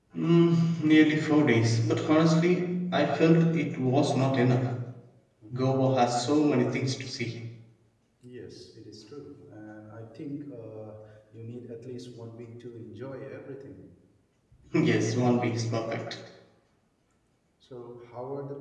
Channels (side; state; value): both; identical; correlation 1.00